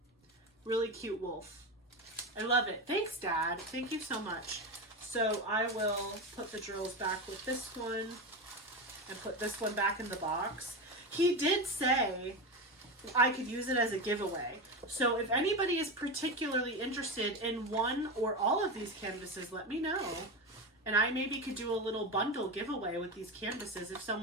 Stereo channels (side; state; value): both; normal; correlation 0.19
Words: Really cute wolf. I love it. Thanks, Dad. Thank you so much. So I will put the drills back with this one and put this one back in the box. He did say I could use it as a giveaway. So if anybody is particularly interested in one or all of these canvases, let me know. And I maybe could do a little bundle giveaway with these canvases. If